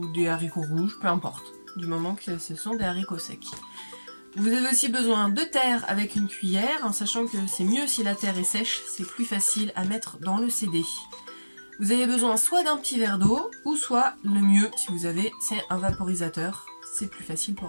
des haricots rouges, peu importe, du moment que ce sont des haricots secs. Vous avez aussi besoin de terre avec une cuillère, en sachant que c'est mieux si la terre est sèche, c'est plus facile à mettre dans le CD. Vous avez besoin soit d'un petit verre d'eau, ou soit le mieux, si vous avez, c'est un vaporisateur, c'est plus facile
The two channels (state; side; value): inverted; both; correlation -1.00